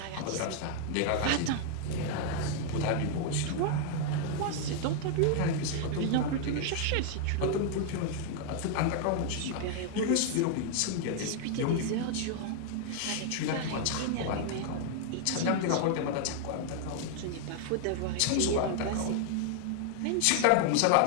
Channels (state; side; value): different; both; correlation 0.00